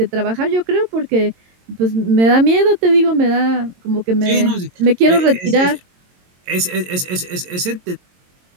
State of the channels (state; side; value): late; left; 22 ms